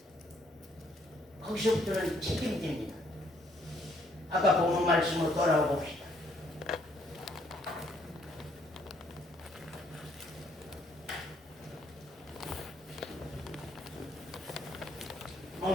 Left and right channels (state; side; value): normal; both; correlation 0.68